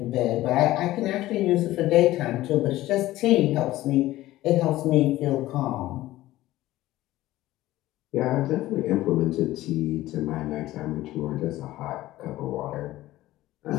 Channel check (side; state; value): right; quieter; 16.1 dB